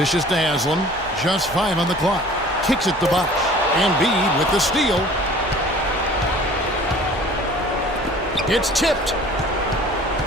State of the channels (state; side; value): normal; both; correlation 0.48